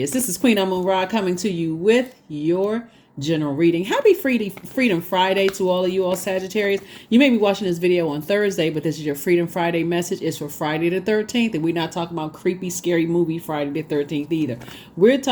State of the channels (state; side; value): identical; both; correlation 1.00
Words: This is Queen Amun Ra coming to you with your general reading. Happy Freedom Friday to all of you all Sagittarius. You may be watching this video on Thursday, but this is your Freedom Friday message. It's for Friday the 13th, and we're not talking about creepy, scary movie Friday the 13th either. We're